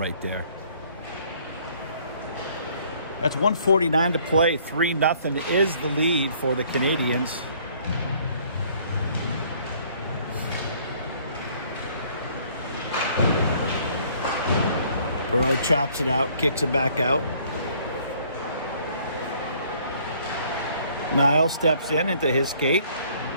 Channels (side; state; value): both; inverted; correlation -0.60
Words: there. That's 1:49 to play. 3-0 is the lead for the Canadians. Perot chops it out, kicks it back out. Niles steps in into his skate,